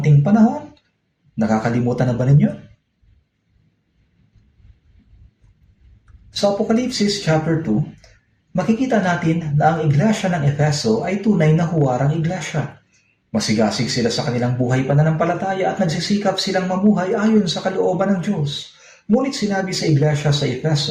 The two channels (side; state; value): both; identical; correlation 1.00